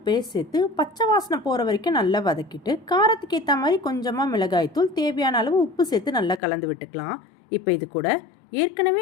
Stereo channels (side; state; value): right; drops out; at 6.4 s